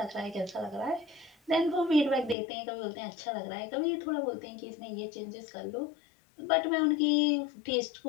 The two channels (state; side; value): drops out; right; at 2.4 s